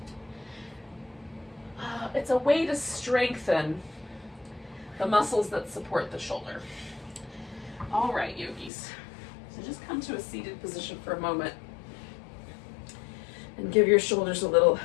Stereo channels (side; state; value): right; drops out; at 8.7 s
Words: it's a way to strengthen the muscles that support the shoulder. All right, yogis. So just come to a seated position for a moment and give your shoulders a little